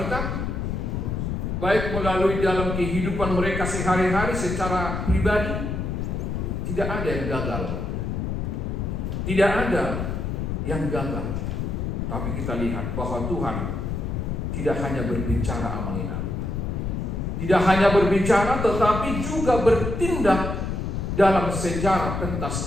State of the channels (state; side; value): noise; left; rumble, 2 dB below the sound